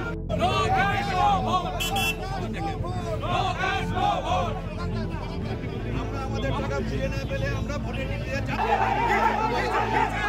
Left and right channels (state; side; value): identical; both; correlation 1.00